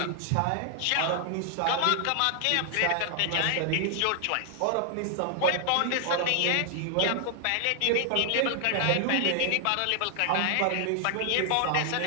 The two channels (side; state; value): both; different; correlation 0.00